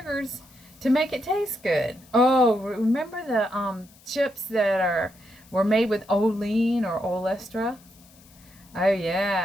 to make it taste good. Oh, remember the chips that were made with Olean or Olestra? Oh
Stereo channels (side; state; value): left; noise; hiss, 26 dB below the sound